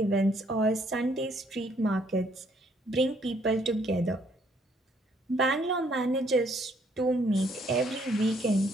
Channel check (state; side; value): normal; both; correlation 0.67